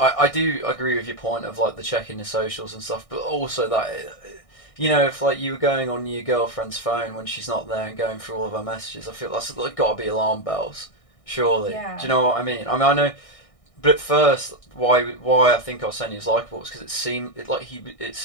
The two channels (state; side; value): late; right; 1.6 ms